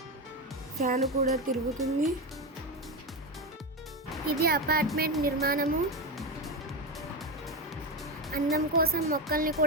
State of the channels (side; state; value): both; normal; correlation 0.15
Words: ఫ్యాన్ కూడా తిరుగుతుంది. ఇది అపార్ట్మెంట్ నిర్మాణము. అందం కోసం మొక్కల్ని